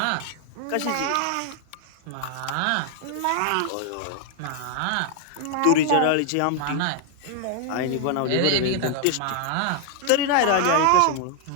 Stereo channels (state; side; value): different; both; correlation 0.00